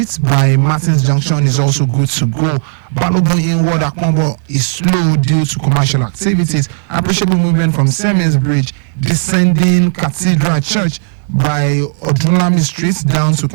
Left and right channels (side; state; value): left; silent; digital silence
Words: by Martins Junction is also good to go. Balogun inward Akwambo is slow due to commercial activities. Appreciable movement from Siemens Bridge, descending Cathedral Church by Odunlami Street down to